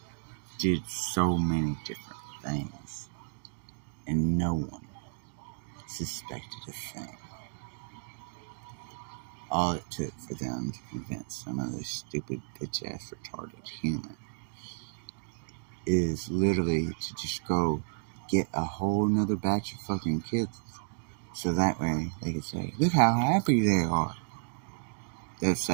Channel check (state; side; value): silent; left; digital silence